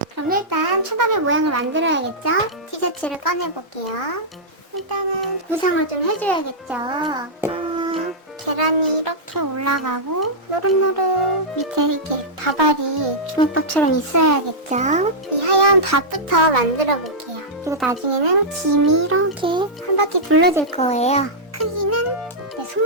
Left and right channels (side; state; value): both; normal; correlation -0.10